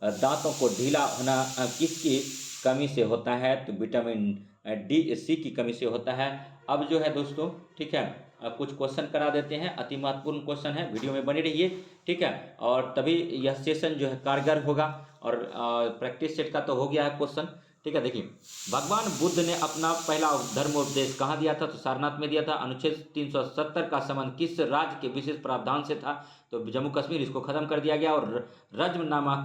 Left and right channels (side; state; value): both; identical; correlation 1.00